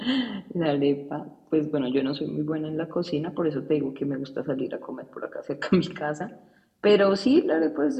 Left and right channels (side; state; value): both; identical; correlation 1.00